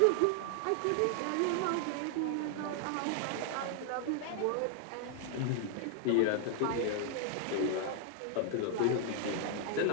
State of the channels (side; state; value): both; different; correlation 0.00